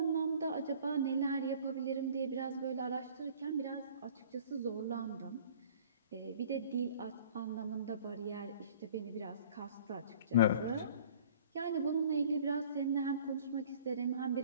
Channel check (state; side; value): inverted; both; correlation -0.49